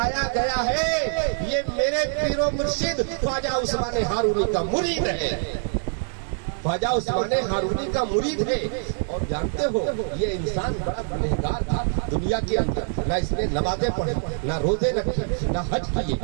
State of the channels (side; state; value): left; silent; digital silence